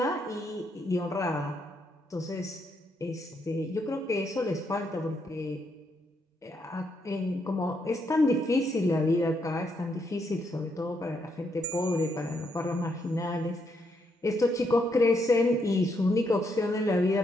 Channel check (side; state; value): both; normal; correlation 0.77